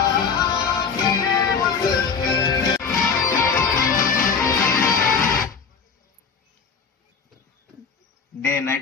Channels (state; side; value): quieter; right; 5.8 dB